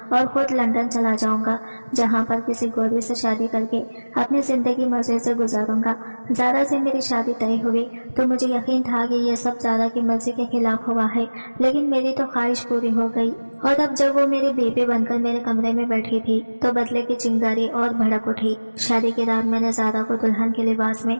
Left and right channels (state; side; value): inverted; both; correlation -1.00